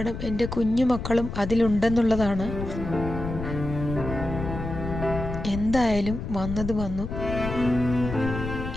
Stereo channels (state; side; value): noise; left; rumble, 6 dB below the sound